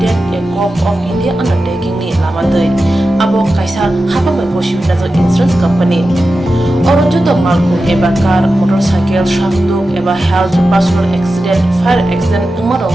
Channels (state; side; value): normal; both; correlation 0.92